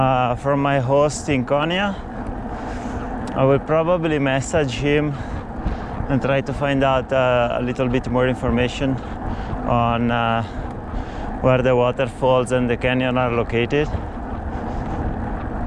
from my host in Konya. I will probably message him and try to find out a little bit more information on where the waterfalls and the canyon are located.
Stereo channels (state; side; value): identical; both; correlation 1.00